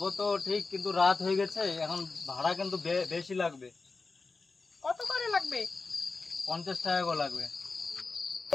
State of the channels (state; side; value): quieter; right; 4.0 dB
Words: তো ঠিক, কিন্তু রাত হয়ে গেছে, এখন ভাড়া কিন্তু বেশি লাগবে। কত করে লাগবে? 50 টাকা করে লাগবে।